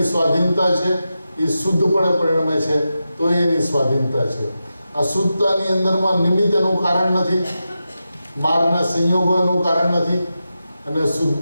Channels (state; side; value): inverted; both; correlation -0.90